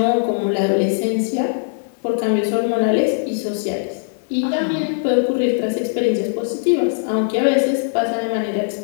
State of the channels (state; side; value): silent; right; 66 dB below the other